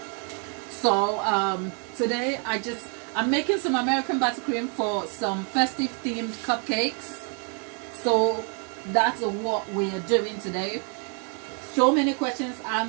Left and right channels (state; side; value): quieter; left; 39.4 dB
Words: So today I'm making some American buttercream for some festive themed cupcakes. So that's what we are doing today. So many questions